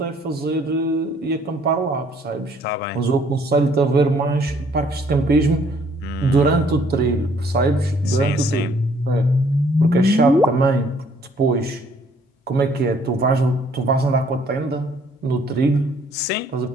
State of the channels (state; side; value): normal; both; correlation 0.62